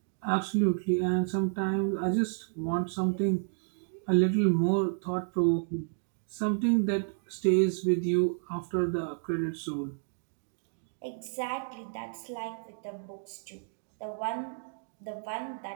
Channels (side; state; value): left; silent; digital silence